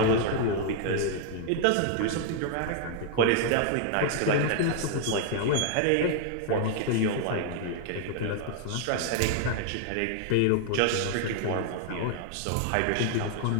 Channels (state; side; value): different; both; correlation 0.00